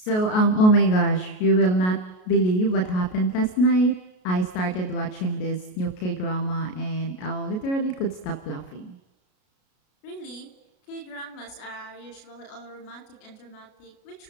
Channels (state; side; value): late; right; 33 ms